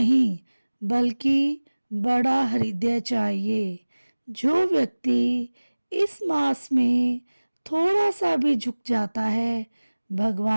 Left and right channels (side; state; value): both; inverted; correlation -1.00